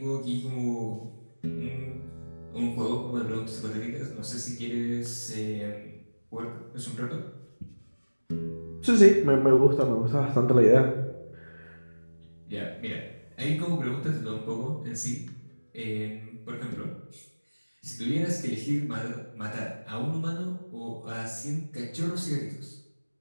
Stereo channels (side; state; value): both; inverted; correlation -1.00